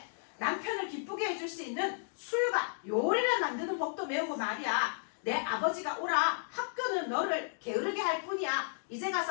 남편을 기쁘게 해줄 수 있는 술과 요리를 만드는 법도 배우고 말이야. 내 아버지가 오라. 학교는 너를 게으르게 할 뿐이야. 이제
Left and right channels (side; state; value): right; silent; digital silence